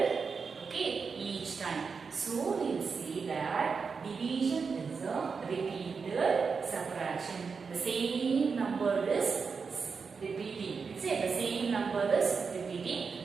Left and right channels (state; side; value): quieter; left; 5.3 dB